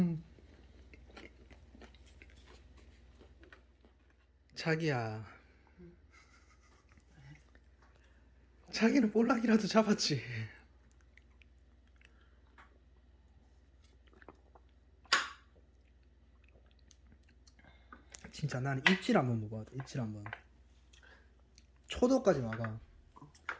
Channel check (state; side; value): identical; both; correlation 1.00